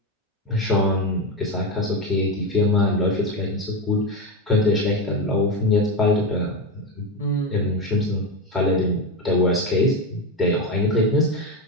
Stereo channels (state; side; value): normal; both; correlation 0.14